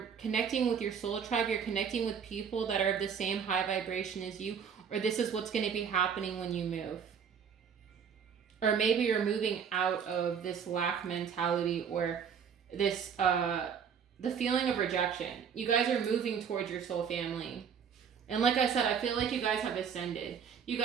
connecting with your soul tribe, you're connecting with people that are of the same high vibration as you, or this is what's going to be happening when you move. Or maybe you're moving out of this lack mentality, or this, the feeling of rejection. You guys are moving towards your soul family. And like I said, I feel like you guys have ascended. You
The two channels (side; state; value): left; quieter; 7.2 dB